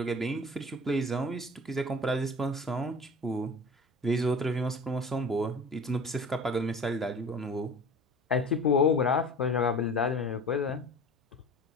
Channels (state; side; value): normal; both; correlation 0.40